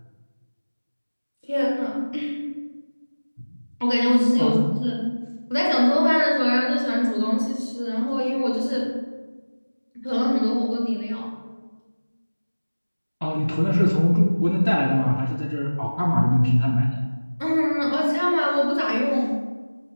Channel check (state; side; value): inverted; both; correlation -1.00